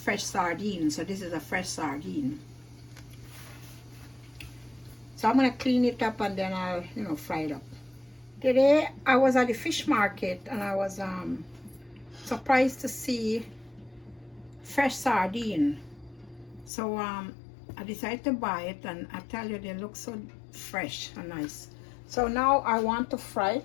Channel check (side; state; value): right; drops out; at 16.7 s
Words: sardine. So this is a fresh sardine. So I'm gonna clean it up and then I'll, fry it up. Today I was at the fish market and I was surprised to see fresh sardine. So I decided to buy it, and I tell you, they look so fresh and nice. So now I want to fry